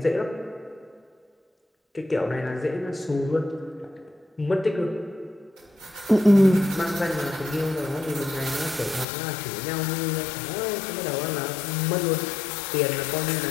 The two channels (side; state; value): right; drops out; at 9.1 s